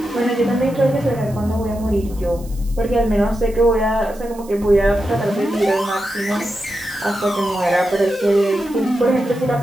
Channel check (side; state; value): right; noise; hiss, 22 dB below the sound